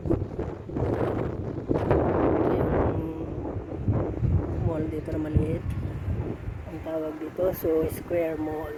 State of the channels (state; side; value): identical; both; correlation 1.00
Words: Mall dito na maliit. Ang tawag dito, Soho Square